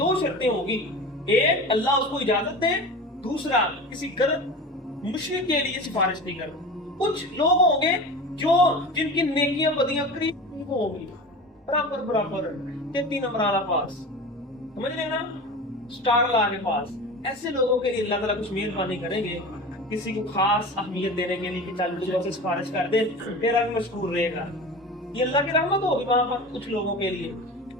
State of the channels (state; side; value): normal; both; correlation 0.32